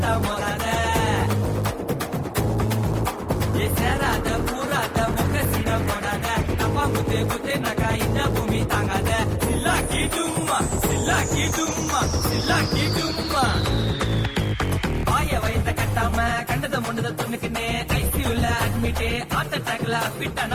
மோதாத ஏ சேராத பூராத முகசிட போடாத அப்பா குத்து குத்து நகா இந்த பூமி தாங்காத சில்லாக்கி டும்மா சில்லாக்கி டும்மா சில்லாக்கி டும்மா வாய வயத்த கட்டாம கண்டத முண்டத துணுக்குனே ஐசியூல அட்மிட்டே ஹார்ட் அட்டாக்ல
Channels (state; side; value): identical; both; correlation 1.00